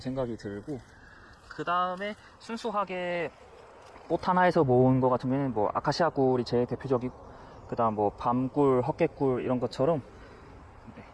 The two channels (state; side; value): identical; both; correlation 1.00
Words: 들고, 그 다음에 순수하게 꽃 하나에서 모은 것 같은 경우에는 뭐 아카시아 꿀이 제일 대표적이고, 그 다음 뭐 밤꿀, 헛개꿀 이런 것처럼